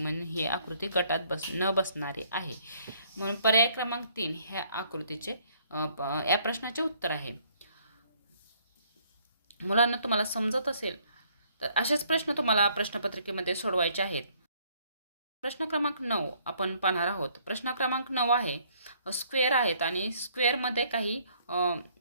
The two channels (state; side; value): inverted; both; correlation -0.64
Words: ही आकृती गटात न बसणारी आहे. म्हणून पर्याय क्रमांक 3 ह्या आकृतीचे या प्रश्नाचे उत्तर आहे. मुलांना तुम्हाला समजत असेल तर असेच प्रश्न तुम्हाला प्रश्नपत्रिकेमध्ये सोडवायचे आहेत. प्रश्न क्रमांक 9 आपण पाहणार आहोत. प्रश्न क्रमांक 9 आहे स्क्वेअर आहेत आणि स्क्वेअरमध्ये काही